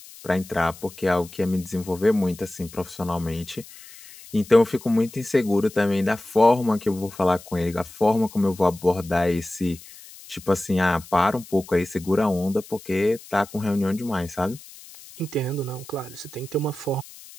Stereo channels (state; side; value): noise; left; hiss, 19 dB below the sound